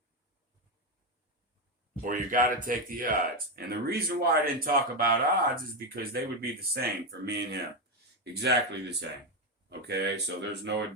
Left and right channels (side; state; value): both; normal; correlation 0.09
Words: or you got to take the odds. And the reason why I didn't talk about odds is because they would be the same for me and him. Exactly the same. Okay, so there's no